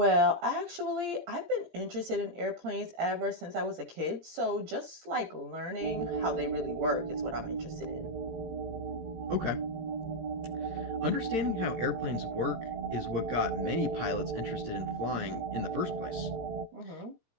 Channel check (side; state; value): left; late; 17 ms